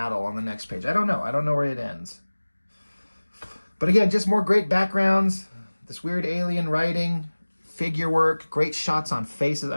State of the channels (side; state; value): both; inverted; correlation -1.00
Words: on the next page. I don't know. I don't know where it ends. But again, just more great backgrounds. This weird alien writing. Figure work, great shots on faces.